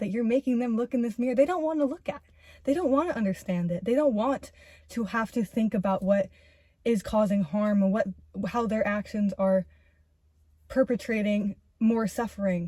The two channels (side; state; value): both; identical; correlation 1.00